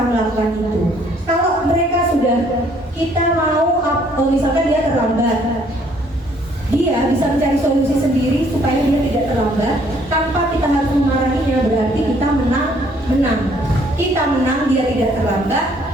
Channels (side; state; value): both; normal; correlation 0.63